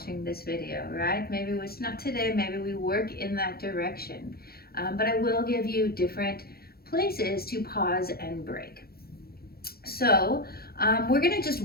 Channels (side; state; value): right; late; 0.45 ms